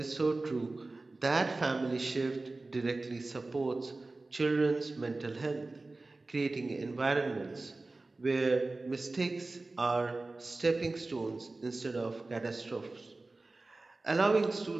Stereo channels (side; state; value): left; quieter; 3.2 dB